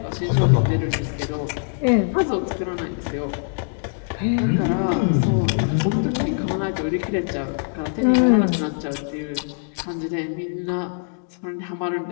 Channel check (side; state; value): right; silent; digital silence